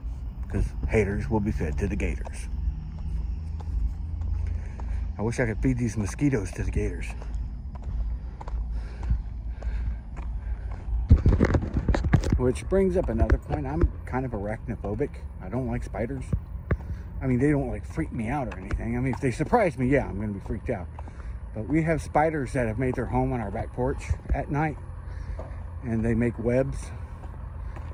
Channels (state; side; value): identical; both; correlation 1.00